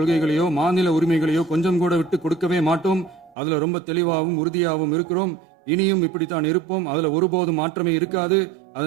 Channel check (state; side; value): drops out; left; at 3.4 s